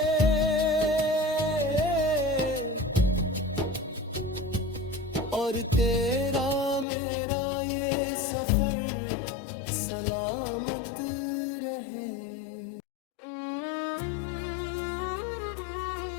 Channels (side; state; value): right; drops out; at 6.9 s